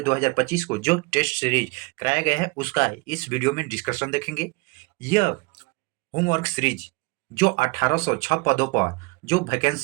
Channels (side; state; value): left; quieter; 26.2 dB